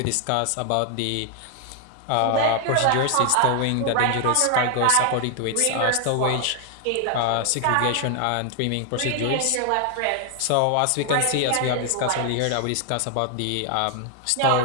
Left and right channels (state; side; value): different; both; correlation 0.00